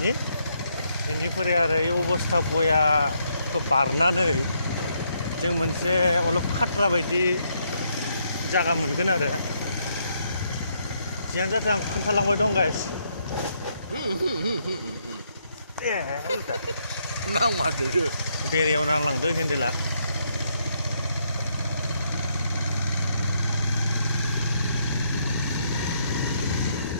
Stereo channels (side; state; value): both; inverted; correlation -0.75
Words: बेनिफ्राय आरो এই अबस्था बयाखौ बारनानै जों मोनसे अलप खाथ्रा बायदि जागा मोनगोन आरो जियानो जाथों आं खोन्थालांबाय दं गाइस नांमारदो बेरेयाव नांलांदो हेन्देला